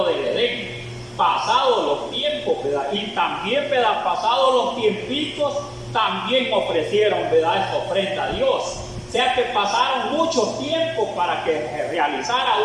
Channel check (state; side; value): identical; both; correlation 1.00